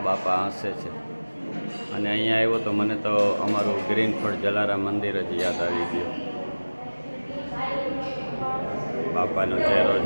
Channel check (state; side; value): inverted; both; correlation -1.00